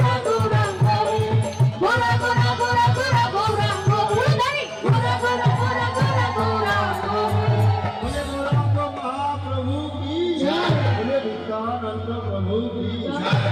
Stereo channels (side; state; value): both; identical; correlation 1.00